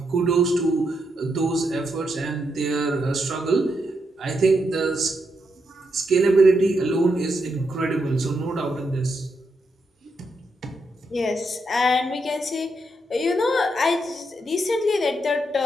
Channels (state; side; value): normal; both; correlation 0.81